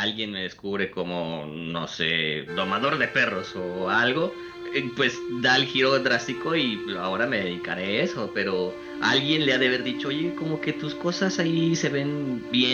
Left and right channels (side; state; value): both; identical; correlation 1.00